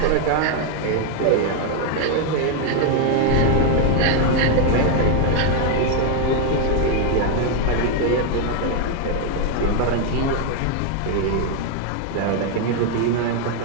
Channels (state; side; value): different; both; correlation 0.01